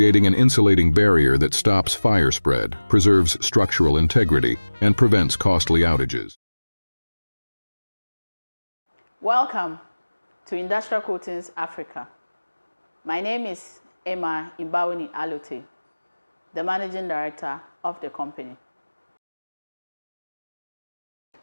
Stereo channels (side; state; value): both; inverted; correlation -1.00